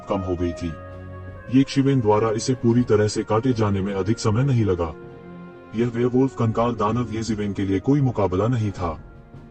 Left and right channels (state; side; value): identical; both; correlation 1.00